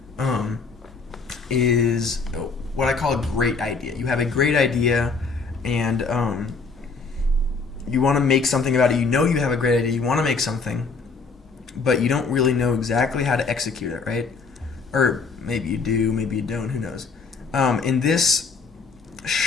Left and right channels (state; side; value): quieter; right; 4.6 dB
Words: is what I call a great idea. You have a great idea, and you want to make something about it. You know you have a great idea. You want to make something, but you don't really know exactly how to execute it, right? Or maybe you do, maybe you don't. Who knows? In this